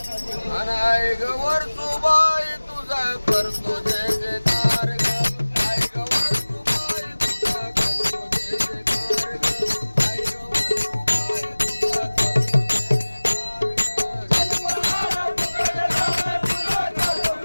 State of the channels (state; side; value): inverted; both; correlation -1.00